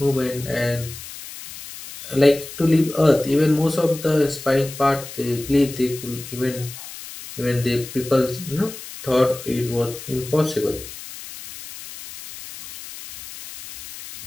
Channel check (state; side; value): noise; left; hiss, 13 dB below the sound